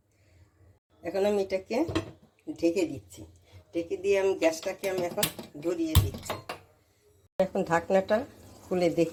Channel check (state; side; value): identical; both; correlation 1.00